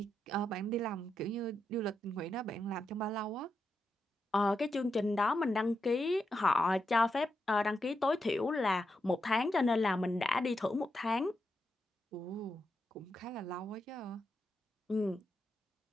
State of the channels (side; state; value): both; normal; correlation 0.85